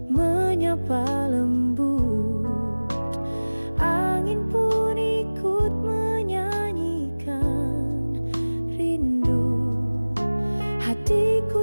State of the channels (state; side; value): inverted; both; correlation -1.00